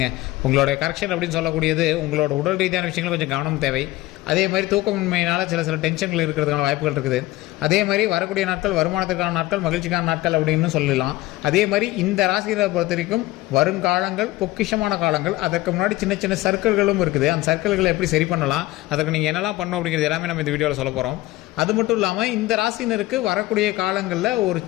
உங்களுடைய கரெக்ஷன் அப்படின்னு சொல்லக்கூடியது உங்களோட உடல் ரீதியான விஷயங்கள் கொஞ்சம் கவனம் தேவை. அதே மாதிரி தூக்கமின்மையினால் சில டென்ஷன்கள் இருக்கிறதுக்கான வாய்ப்புகள் இருக்குது. அதே மாதிரி வரக்கூடிய நாட்கள் வருமானத்துக்கான நாட்கள், மகிழ்ச்சிக்கான நாட்கள் அப்படின்னு சொல்லலாம். அதே மாதிரி இந்த ராசியை பொறுத்த வரைக்கும் வருங்காலங்கள் பொக்கிஷமான காலங்கள். அதற்கு முன்னாடி சின்ன சின்ன சர்க்கிள்களும் இருக்குது. அந்த சர்க்கிள்களை எப்படி சரி பண்ணலாம், அதற்கு நீங்கள் என்னெல்லாம் பண்ணணும் அப்படிங்கிறது எல்லாமே நம்ம இந்த வீடியோவில் சொல்ல போகிறோம். அது மட்டும் இல்லாமல் இந்த ராசினருக்கு வரக்கூடிய காலங்களில் ஒரு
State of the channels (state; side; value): quieter; right; 17.9 dB